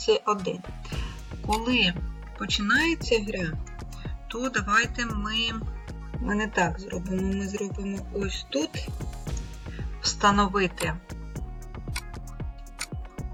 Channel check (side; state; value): both; identical; correlation 1.00